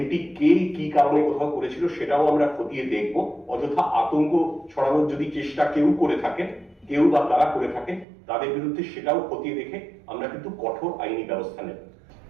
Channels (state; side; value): drops out; left; at 8.1 s